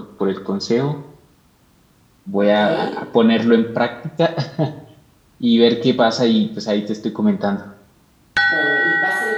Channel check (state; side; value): identical; both; correlation 1.00